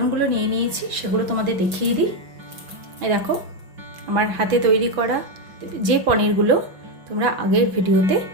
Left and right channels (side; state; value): left; late; 6.0 ms